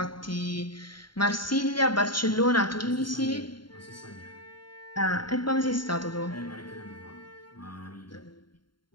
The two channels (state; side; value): late; right; 0.72 ms